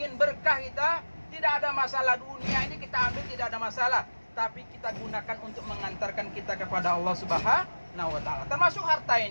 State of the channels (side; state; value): both; inverted; correlation -1.00